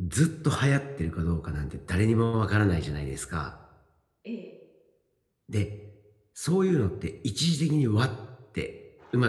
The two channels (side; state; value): both; identical; correlation 1.00